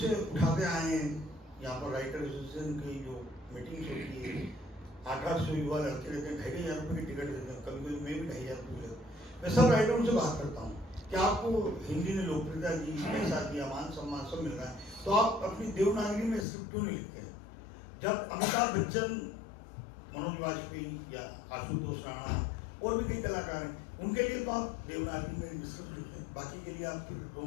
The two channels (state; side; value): drops out; right; at 16.4 s